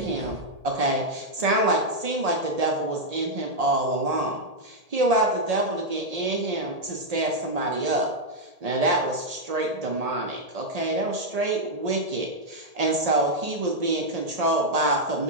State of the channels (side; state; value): left; late; 1.8 ms